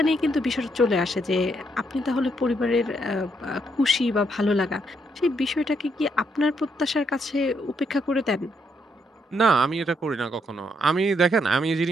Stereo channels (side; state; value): both; normal; correlation 0.75